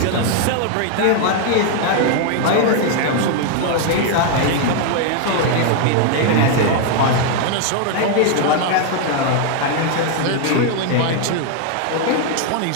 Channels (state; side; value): different; both; correlation 0.00